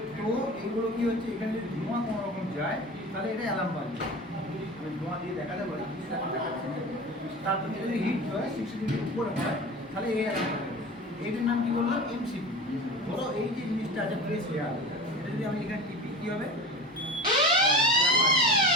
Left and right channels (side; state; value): both; normal; correlation 0.33